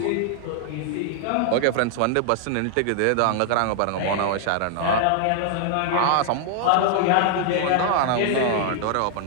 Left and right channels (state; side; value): different; both; correlation 0.00